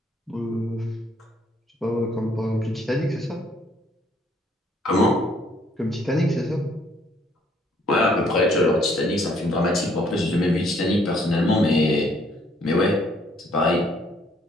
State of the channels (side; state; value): both; normal; correlation 0.65